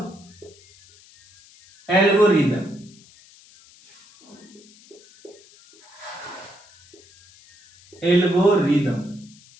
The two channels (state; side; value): noise; left; hiss, 26 dB below the sound